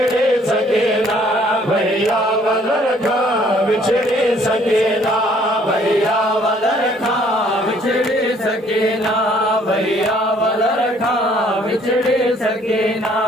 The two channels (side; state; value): both; normal; correlation 0.61